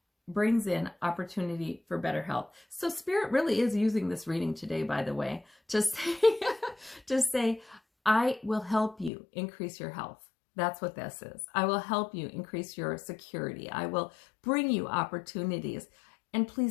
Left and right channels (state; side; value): drops out; right; at 9.1 s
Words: brings in opportunity for better health. So Spirit really is using this reading today, by the way, to say, I will help you increase your health. That's what this is. I will help you increase your security. I will bring you opportunities. And